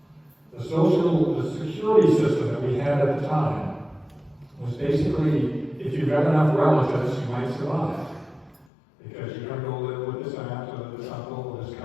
The security system that we had at the time was basically, if you've got enough relatives, you might survive. Because you're going to go live with this aunt or this uncle or this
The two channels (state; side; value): drops out; right; at 8.7 s